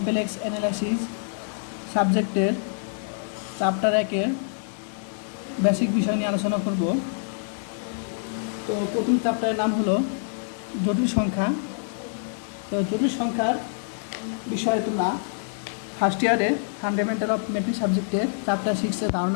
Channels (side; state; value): right; silent; digital silence